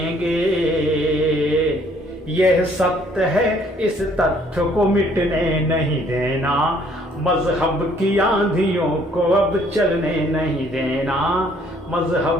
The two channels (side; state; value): both; normal; correlation 0.62